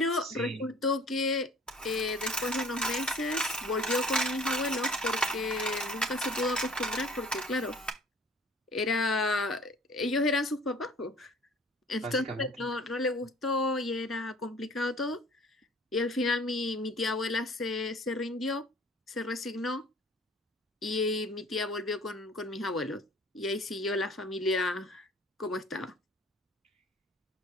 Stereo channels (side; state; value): both; normal; correlation 0.50